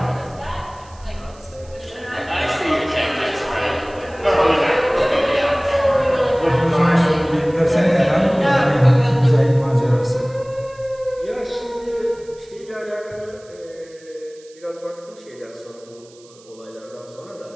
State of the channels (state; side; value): noise; right; hiss, 26 dB below the sound